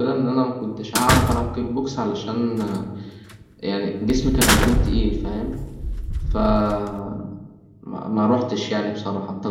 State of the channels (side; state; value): both; identical; correlation 1.00